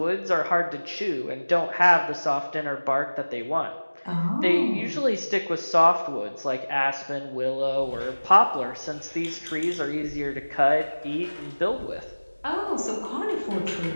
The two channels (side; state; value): both; inverted; correlation -1.00